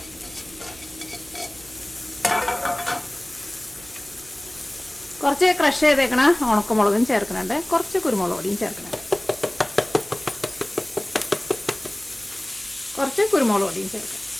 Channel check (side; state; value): right; noise; hum, 22 dB below the sound